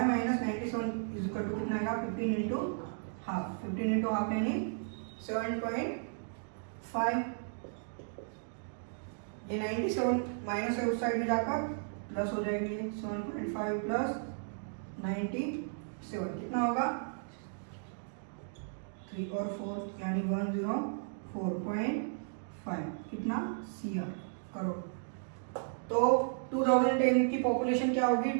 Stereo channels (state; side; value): silent; left; digital silence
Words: minus 97 is equal to कितना आएगा 15 इंटू हाफ, 15 इंटू हाफ यानी 7.5। ये 97 माइनस है उस साइड में जाकर प्लस हो जाएगी, 7.5 प्लस 97 कितना होगा 3 और 4 यानी 104.5 कितना CR करोड़। तो 2010 की पॉपुलेशन क्या होगी